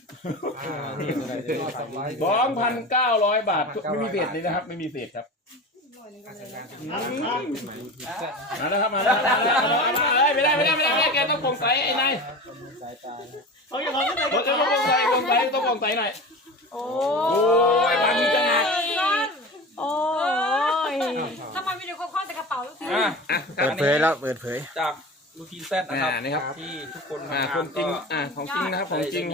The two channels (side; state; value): both; normal; correlation 0.31